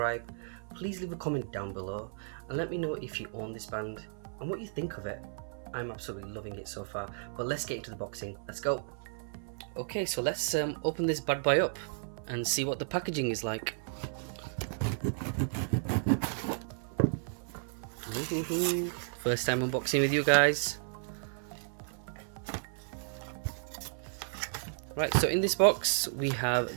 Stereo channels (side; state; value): left; silent; 55 dB below the other